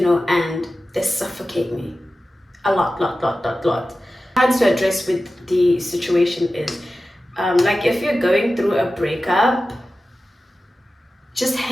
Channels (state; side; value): normal; both; correlation 0.94